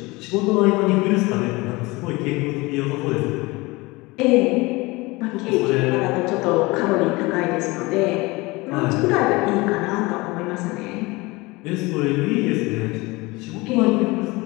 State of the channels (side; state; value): right; quieter; 23.1 dB